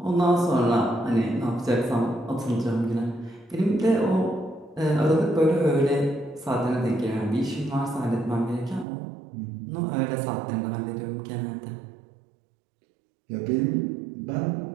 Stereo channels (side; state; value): left; drops out; at 8.8 s